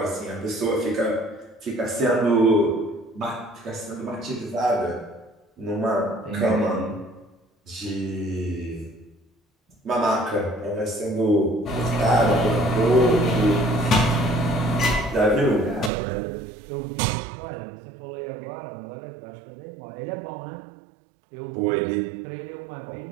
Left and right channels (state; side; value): drops out; left; at 15.9 s